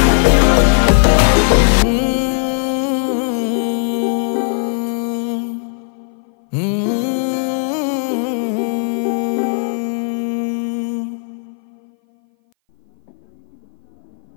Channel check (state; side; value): silent; right; 59 dB below the other